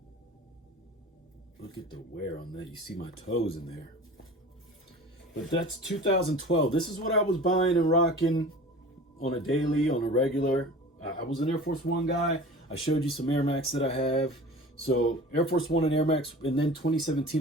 Look at the wear on that. You see my toes in there. But that's 2012. This is what I was buying and rocking on a daily, on a regular. I was an Air Force One guy. I showed you some Air Max that I have. So Air Force One and Air Max. And then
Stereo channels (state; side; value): normal; both; correlation 0.39